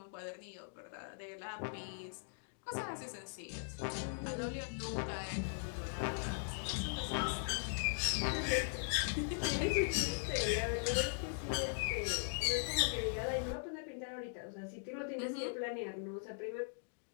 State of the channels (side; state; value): right; silent; digital silence